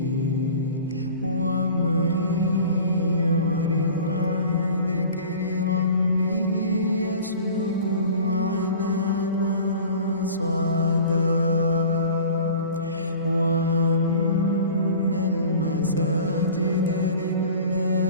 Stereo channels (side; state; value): both; inverted; correlation -0.42